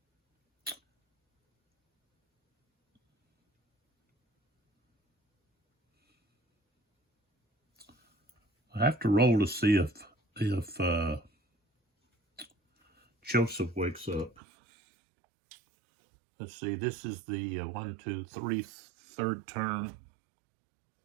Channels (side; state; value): left; drops out; at 14.4 s